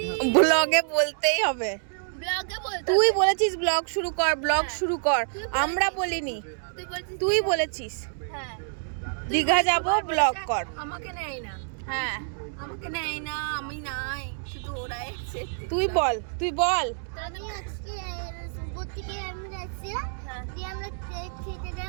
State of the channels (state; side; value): silent; left; digital silence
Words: ব্লগে বলতেই হবে, ব্লগে বলতে। তুই বলেছিস ব্লগ শুরু কর, ব্লগ শুরু কর, আমরা বলিনি, তুই বলেছিস হ্যাঁ দীঘা যাব ব্লগ কর। আমাকে নেয় না, হ্যাঁ আমাকে নেয় না, আমি নাই, শুধু ওরাই আছে। তুই বল আমি আজকে সুবোধ থেকে আমরা যাচ্ছি, দিয়ে আমরা কেক খেতে